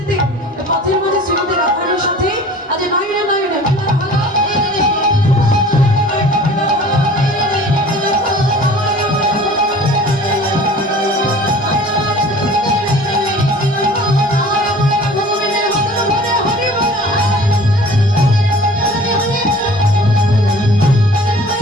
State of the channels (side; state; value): both; normal; correlation 0.46